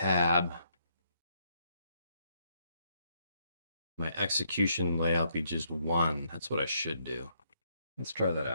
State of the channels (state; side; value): inverted; both; correlation -0.73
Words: My execution layout be just one. That's what I should do. Let's try that